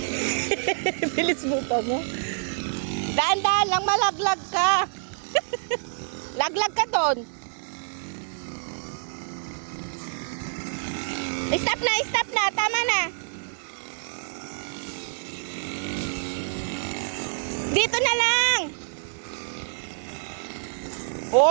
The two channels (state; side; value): silent; left; 60 dB below the other